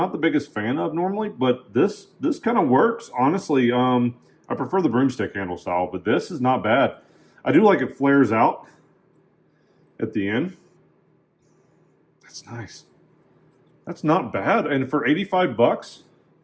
the biggest fan of normally, but this kind of works. Honestly, I prefer the broomstick handle style, but this is not bad. I do like it flares out at the end. That's nice. That's not bad. And for 85 bucks,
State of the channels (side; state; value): both; identical; correlation 1.00